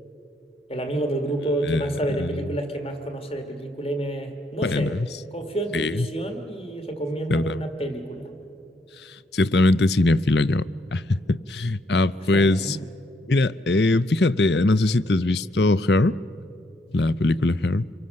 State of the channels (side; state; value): both; normal; correlation 0.73